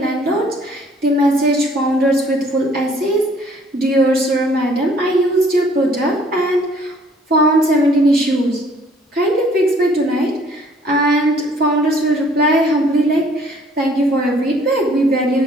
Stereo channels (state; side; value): normal; both; correlation 0.59